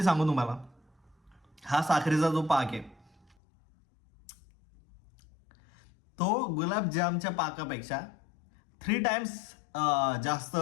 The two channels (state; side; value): drops out; right; at 3.4 s